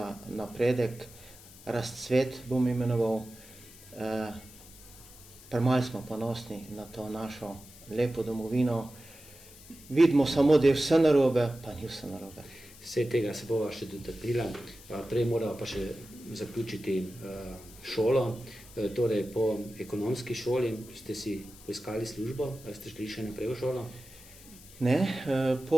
napredek, razcvet bom imenoval, premalo smo ponosni na to našo lepo domovino, vidimo samo, da je vse narobe, pa ni vse narobe. Vse tega se bova še dotaknila, prej morava pa še zaključiti šolo, torej po ekonomski šoli ste si poiskali službo, ste šli še naprej v šolo? Ne,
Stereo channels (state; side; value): noise; left; hiss, 20 dB below the sound